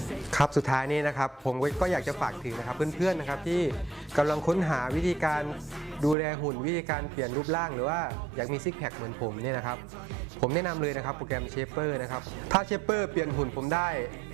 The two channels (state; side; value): drops out; left; at 6.2 s